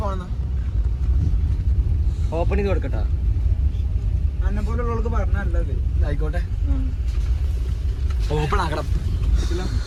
ഓപ്പൺ ചെയ്ത് കൊടുക്കട്ടോ. അന്നെ പോലുള്ളവർക്ക് പറഞ്ഞത് ആയിക്കോട്ടെ. ഓപ്പൺ ആക്കണം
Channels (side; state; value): both; identical; correlation 1.00